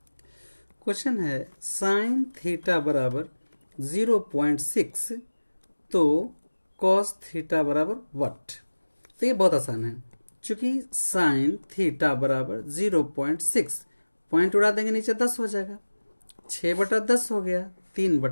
क्वेश्चन है साइन थीटा बराबर 0.6, तो कॉस थीटा बराबर व्हाट। तो ये बहुत आसान है, चूंकि साइन थीटा बराबर 0.6, पॉइंट उड़ा देंगे नीचे 10 हो जाएगा, 6/10 हो गया,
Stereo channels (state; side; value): inverted; both; correlation -1.00